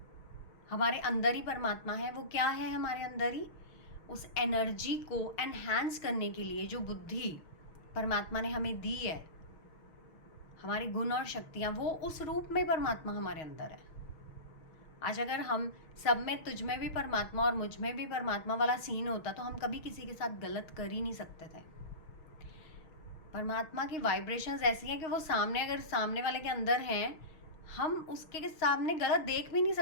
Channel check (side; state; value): right; late; 6.4 ms